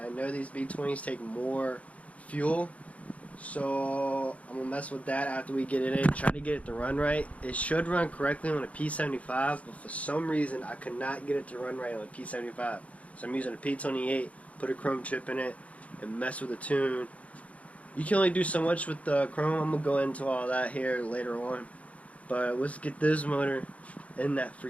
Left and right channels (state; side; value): late; right; 0.066 ms